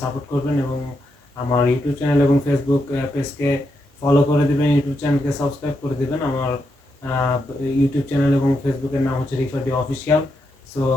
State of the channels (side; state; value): both; normal; correlation 0.83